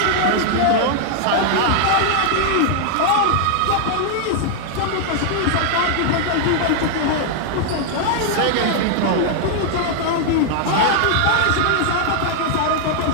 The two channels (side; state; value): both; different; correlation 0.00